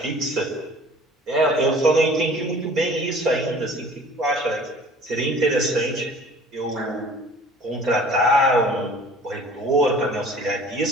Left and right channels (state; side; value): normal; both; correlation 0.48